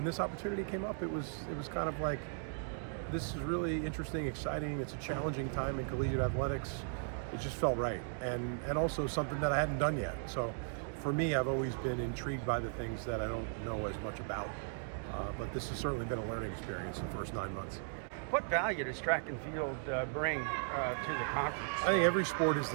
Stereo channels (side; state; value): left; silent; digital silence